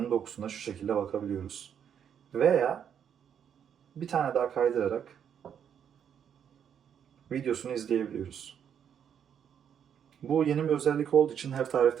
dokusuna şu şekilde bakabiliyoruz. Veya bir tane daha kaydırarak videosunu izleyebiliyoruz. Bu yeni bir özellik olduğu için her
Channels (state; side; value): quieter; left; 8.4 dB